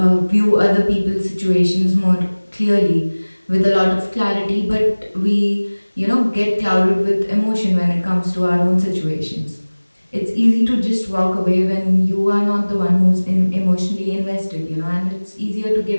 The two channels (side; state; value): both; inverted; correlation -1.00